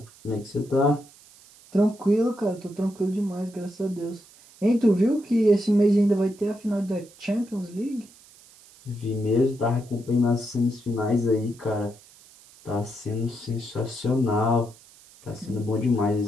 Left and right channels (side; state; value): right; noise; hiss, 25 dB below the sound